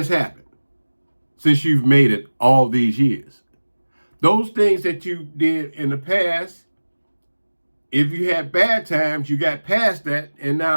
happened since you've made it all these years? Those things that you did in the past, if you had bad times, you got past that, and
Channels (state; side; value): inverted; both; correlation -1.00